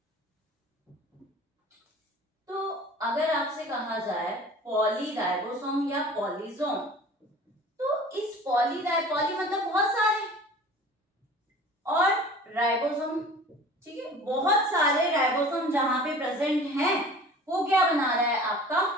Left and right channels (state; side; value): normal; both; correlation 0.43